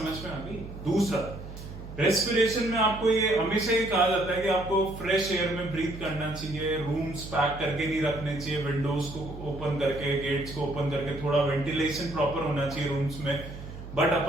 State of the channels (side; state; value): right; noise; hum, 12 dB below the sound